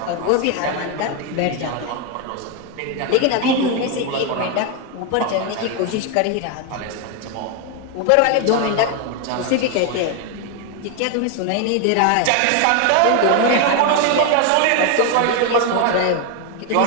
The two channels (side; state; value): both; different; correlation 0.01